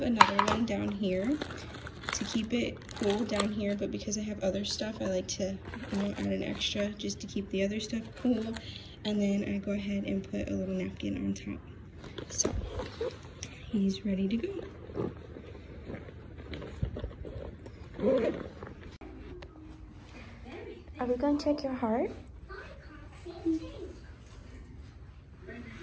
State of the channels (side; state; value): both; identical; correlation 1.00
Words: another one down here to keep it cool down here, but because I have other stuff, I like to, you know, add an extra just to keep the other stuff cool. And then I go ahead and put a little napkin on top. So he's ready to go. Are we going to check your heart?